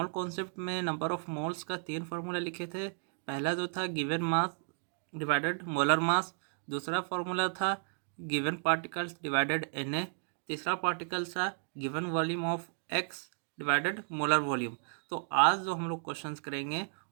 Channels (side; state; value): left; silent; 55 dB below the other